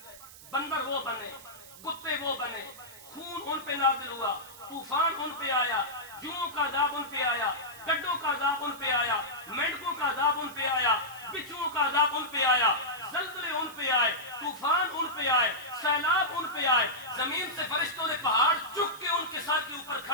بندر وہ بنے، کتے وہ بنے، خون ان پہ نازل ہوا، طوفان ان پہ آیا، جوؤں کا عذاب ان پہ آیا، گڈوں کا عذاب ان پہ آیا، مینڈکوں کا عذاب ان پہ آیا، بچھوؤں کا عذاب ان پہ آیا، زلزلے ان پہ آئے، طوفان ان پہ آئے، سیلاب ان پہ آئے، زمین سے فرشتوں نے پہاڑ چک کے ان کے سر کے اوپر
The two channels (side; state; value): right; noise; hiss, 18 dB below the sound